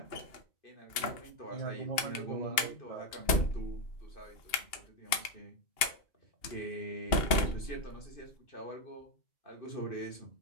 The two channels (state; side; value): late; right; 2.8 ms